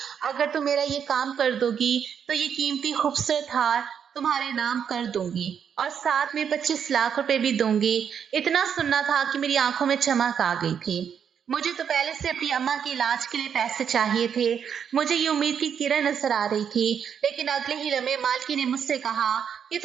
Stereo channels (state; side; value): quieter; left; 7.8 dB